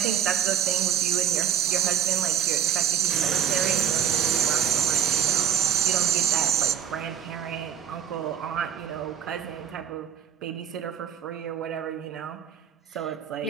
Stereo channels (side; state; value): left; quieter; 8.7 dB